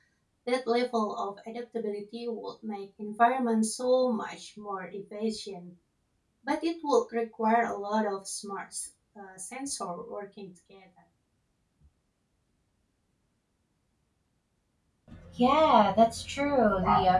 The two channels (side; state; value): both; identical; correlation 1.00